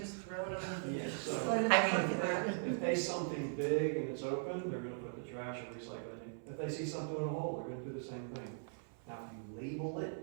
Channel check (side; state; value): left; silent; 51 dB below the other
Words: throw it in the. Yeah, so- throw it in the I mean, front. If they see something big and it's open, they're gonna put the trash or recycle it in. If they see something in a hole, they're gonna do the same thing. Now, if you label